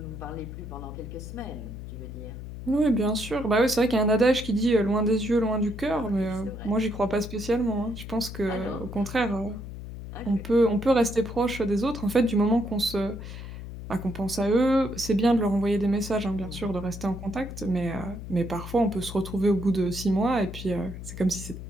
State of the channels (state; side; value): noise; left; hum, 10 dB below the sound